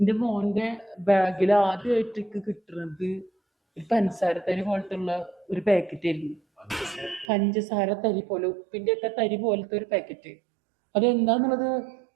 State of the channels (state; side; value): drops out; left; at 7.3 s